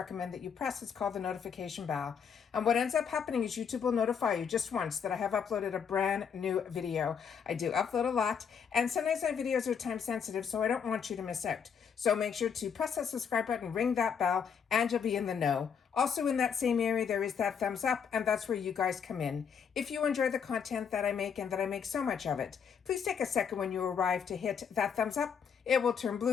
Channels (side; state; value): right; quieter; 7.0 dB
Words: that you press. It's called the notification bell. And what ends up happening is YouTube will notify you just once that I have uploaded a brand new video. I do upload a lot, and sometimes my videos are time sensitive, so I don't want you to miss out. So make sure to press that subscribe button, ring that bell, and you'll be in the know. Also in that same area, there is that thumbs up, and that's where you guys come in. If you enjoy the content that I make and that I make so much of it, please take a second when you arrive to hit that thumbs up. It will turn